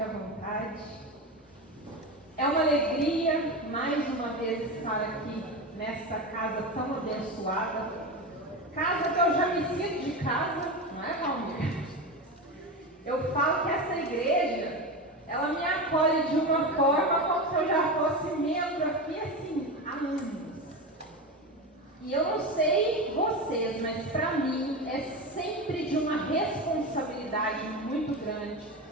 à vontade. É uma alegria mais uma vez estar aqui nesta casa tão abençoada. Casa que eu já me sinto de casa, não é, Valmir? Eu falo que essa igreja, ela me acolhe de uma forma como se eu já fosse membro aqui assim, há anos. E eu não sei vocês, mas para mim é sempre de uma responsabilidade muito grande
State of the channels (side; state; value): both; normal; correlation 0.21